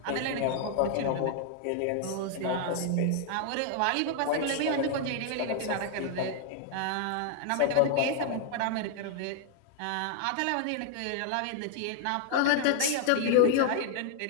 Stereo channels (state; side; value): different; both; correlation 0.00